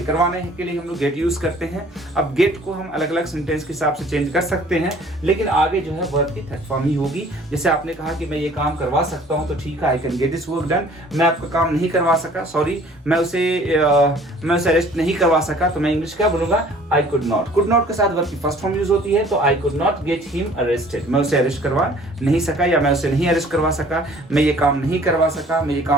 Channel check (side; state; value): both; normal; correlation 0.53